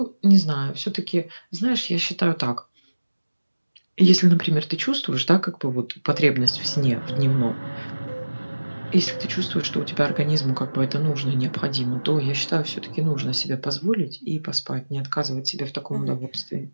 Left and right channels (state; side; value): inverted; both; correlation -1.00